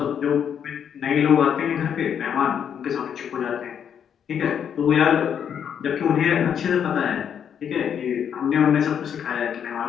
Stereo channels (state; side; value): quieter; right; 8.2 dB